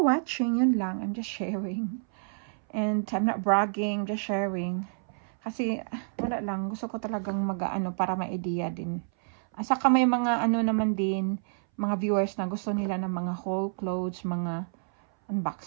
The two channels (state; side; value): silent; left; 59 dB below the other